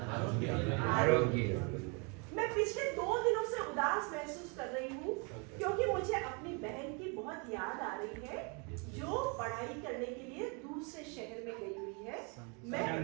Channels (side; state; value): left; quieter; 33.1 dB